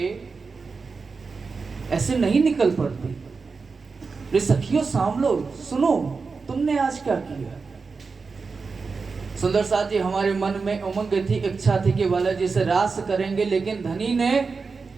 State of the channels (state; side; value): quieter; left; 4.7 dB